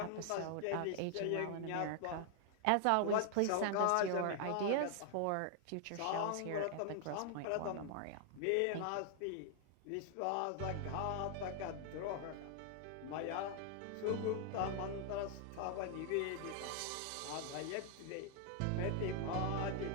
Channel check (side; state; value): both; different; correlation 0.00